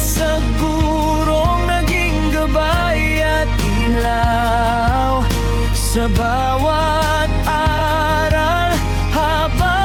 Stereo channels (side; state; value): both; identical; correlation 1.00